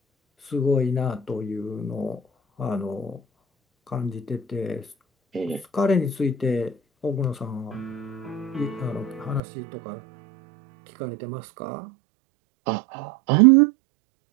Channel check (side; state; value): left; drops out; at 9.4 s